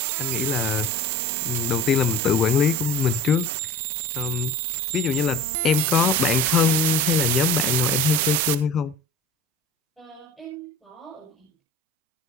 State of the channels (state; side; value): normal; both; correlation 0.37